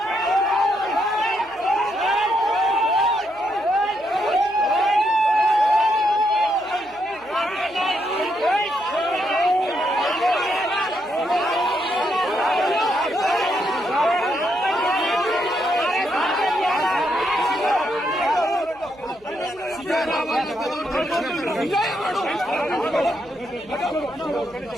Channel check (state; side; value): noise; right; hum, 29 dB below the sound